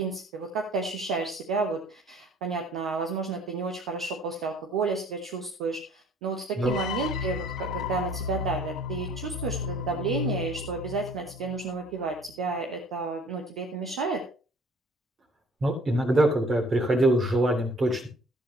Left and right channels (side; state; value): both; normal; correlation 0.53